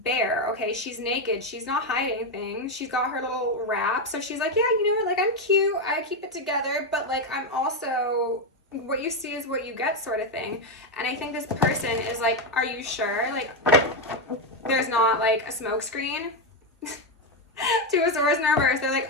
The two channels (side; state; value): both; normal; correlation 0.07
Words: bare, okay? She's naked, she's not hiding things, she's got her little wrap, so she's like, yeah, you know what, like, I'm cute, I keep it together, but like, I'm also, what you see is what you get sort of thing. And I think this person is like, are you sure? Like, there's not like a smoke screen. Two of Swords in reverse. They're